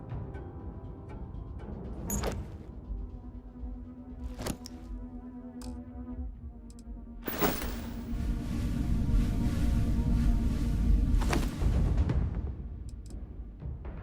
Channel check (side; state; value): both; identical; correlation 1.00